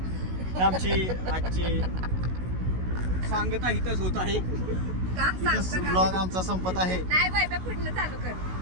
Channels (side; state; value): left; late; 16 ms